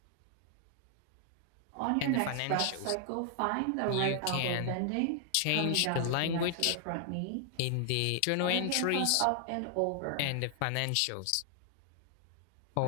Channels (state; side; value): different; both; correlation 0.00